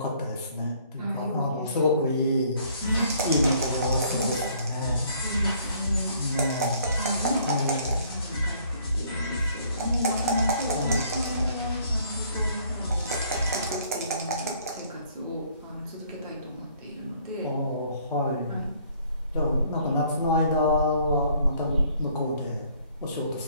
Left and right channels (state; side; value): inverted; both; correlation -0.61